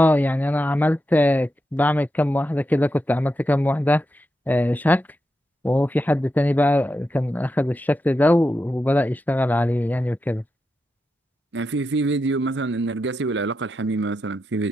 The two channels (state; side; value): normal; both; correlation 0.87